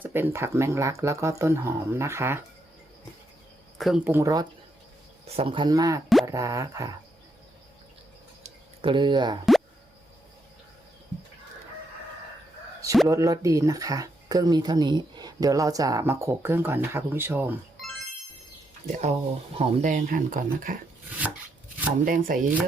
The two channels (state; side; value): normal; both; correlation 0.79